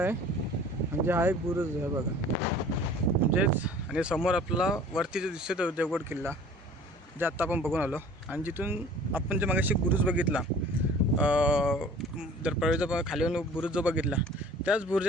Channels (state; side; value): normal; both; correlation 0.48